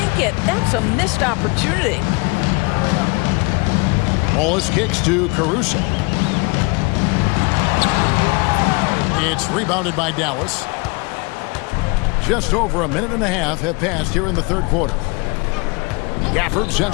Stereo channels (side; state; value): right; quieter; 28.6 dB